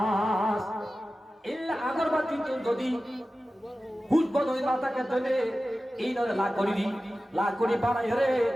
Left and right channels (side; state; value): both; normal; correlation 0.95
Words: ইল্লা আগরবাতি যদি হুজ বলে মাথাকে ধরে এই নরে লা করি বানাই রে